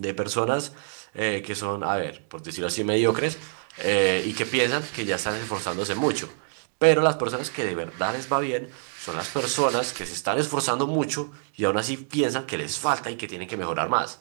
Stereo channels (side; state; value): left; silent; digital silence